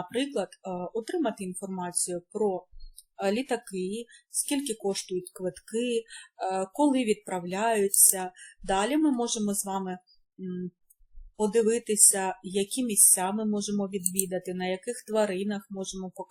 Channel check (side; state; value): both; identical; correlation 1.00